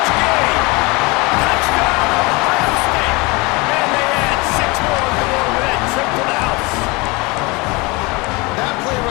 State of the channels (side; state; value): right; quieter; 25.7 dB